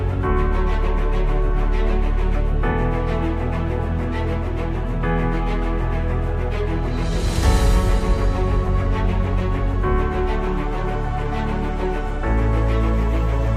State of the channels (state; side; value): identical; both; correlation 1.00